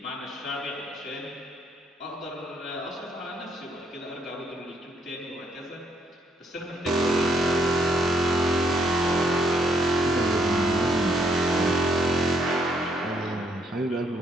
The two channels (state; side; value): normal; both; correlation 0.71